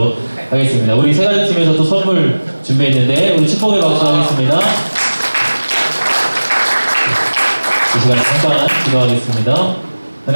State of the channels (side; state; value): both; inverted; correlation -1.00